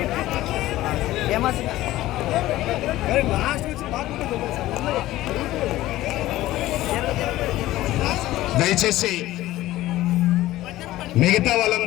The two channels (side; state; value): right; quieter; 15.9 dB